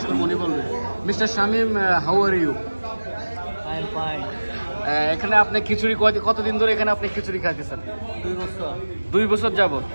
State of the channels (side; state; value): both; inverted; correlation -1.00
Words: করবো, উনি বলবে। Mister Shamim, how are you? এখানে আপনি খিচুড়ি কতদিন ধরে এখানে আপনি খিচুড়ি খাইতেছেন? 2 বছর। 2 বছর যাবত।